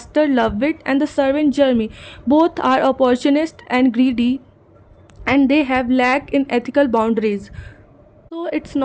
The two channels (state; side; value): identical; both; correlation 1.00